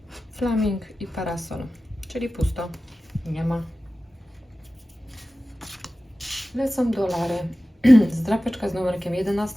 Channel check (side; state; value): both; normal; correlation 0.95